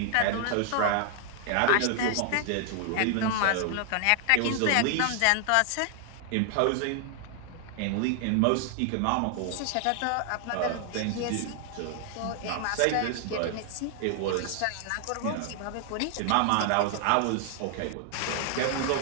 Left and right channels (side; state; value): both; different; correlation 0.00